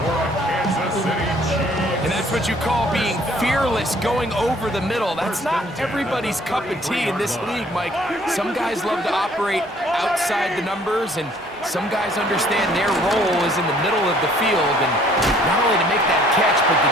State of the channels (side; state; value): both; normal; correlation 0.59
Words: for a Kansas City Chiefs. And that's what you call being fearless, going over the middle. That's not everybody's cup of tea in this league, Mike. Some guys love to operate outside the numbers, and some guys understand their role is in the middle of the field, and not only to make that catch, but to